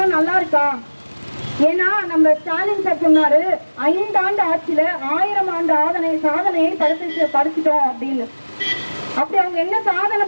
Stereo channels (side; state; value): both; inverted; correlation -1.00